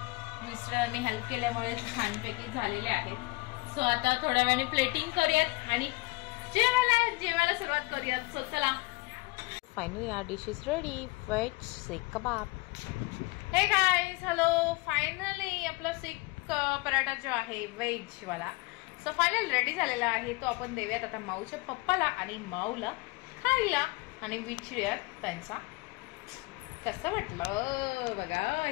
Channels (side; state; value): right; quieter; 24.1 dB